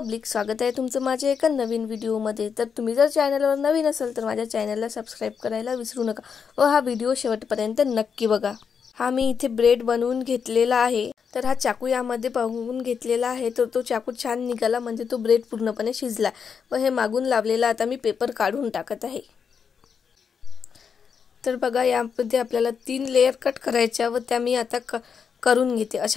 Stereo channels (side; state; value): right; quieter; 6.5 dB